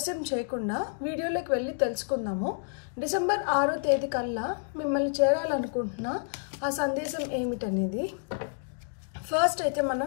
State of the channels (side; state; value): right; silent; digital silence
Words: చేయకుండా వీడియోలోకి వెళ్ళి తెలుసుకుందాము। డిసెంబర్ 6వ తేదీ కల్లా మిమ్మల్ని చేరాలనుకుంటున్న ఆ సందేశం ఏమిటనేది ఫస్ట్ అయితే